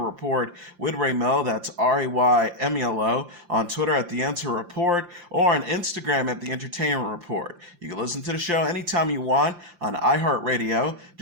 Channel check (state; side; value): late; left; 5.8 ms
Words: Report with Ray Melo, that's RAYMELO, on Twitter at The Enter Report, or on Instagram at The Entertainment Report. You can listen to the show anytime you want on iHeartRadio.